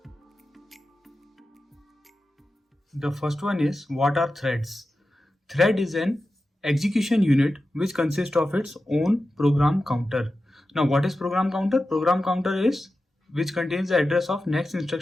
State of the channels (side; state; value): both; normal; correlation 0.92